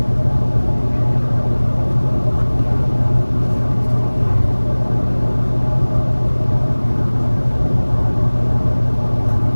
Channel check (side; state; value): both; inverted; correlation -1.00